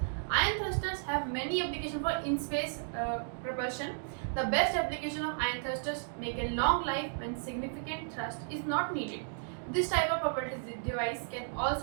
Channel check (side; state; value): left; silent; digital silence